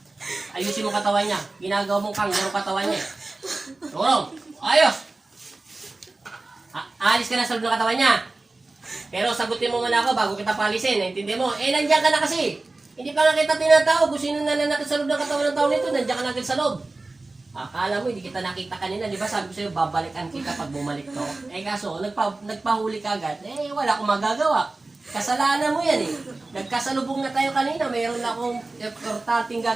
Ayusin mo katawan niya. Ginagawa mong kanggaro katawan niya. Tulong. Ayos. Alis ka na sa loob ng katawan niya. Pero sagutin mo muna ako bago kita palisin. Naintindi mo? Eh, nandiyan ka na kasi. Hindi pa nga kita tinatawag. Kung sino nananakit sa loob ng katawan ng tao nito, nandiyan ka na agad sa loob. Akala mo, hindi kita nakita kanina. Di ba sabi ko sa'yo, babalikan kita pag bumalik to. Eh kaso, nagpahuli ka agad. Eh, wala akong magagawa. Kasalanan mo yan eh. Nagkasalubong na tayo kanina. Mayroon na akong importanteng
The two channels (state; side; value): quieter; left; 3.2 dB